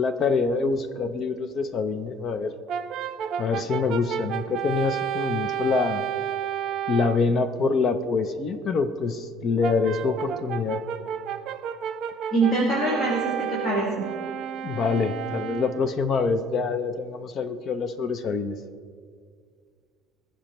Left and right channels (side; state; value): both; normal; correlation 0.58